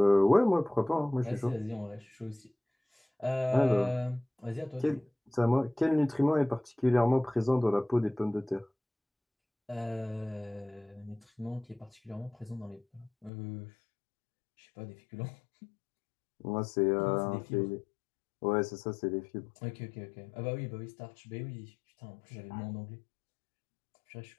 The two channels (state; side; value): drops out; right; at 13.3 s